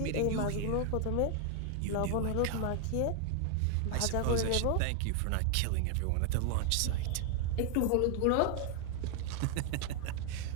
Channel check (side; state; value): both; different; correlation 0.00